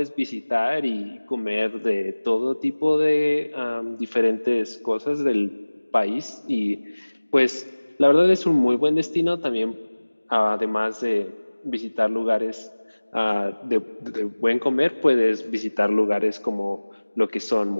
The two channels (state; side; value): inverted; both; correlation -1.00